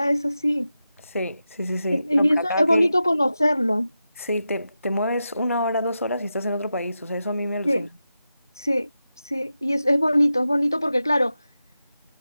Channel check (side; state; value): both; inverted; correlation -0.91